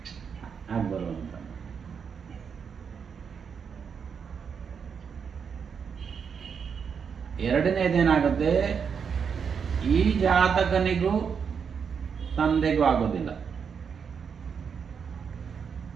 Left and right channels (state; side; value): quieter; left; 6.6 dB